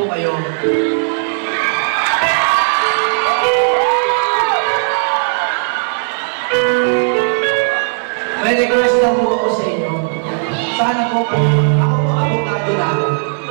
kayo. May request lang po ako sa inyo. Sana po, ako po abogado na ako.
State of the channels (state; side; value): silent; left; digital silence